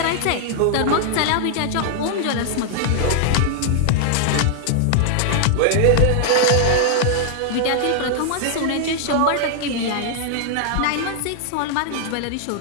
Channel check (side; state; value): both; different; correlation -0.01